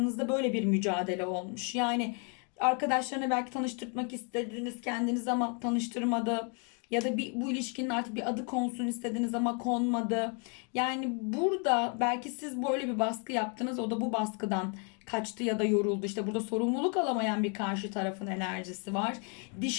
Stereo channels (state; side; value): quieter; right; 37.8 dB